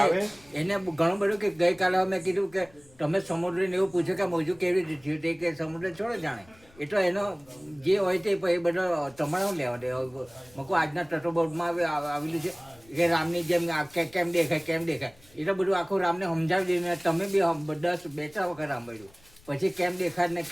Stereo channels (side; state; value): left; noise; rumble, 28 dB below the sound